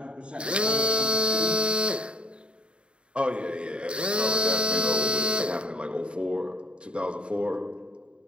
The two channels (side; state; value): left; late; 0.055 ms